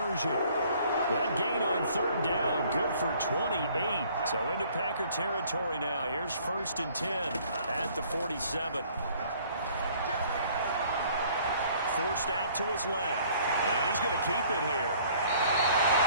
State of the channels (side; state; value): both; inverted; correlation -0.57